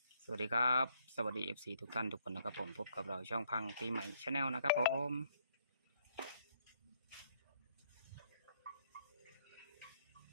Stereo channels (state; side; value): inverted; both; correlation -0.68